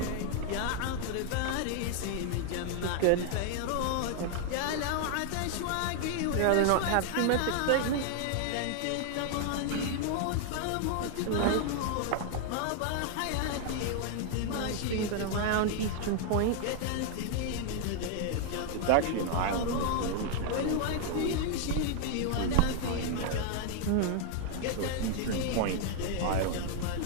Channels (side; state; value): both; different; correlation 0.00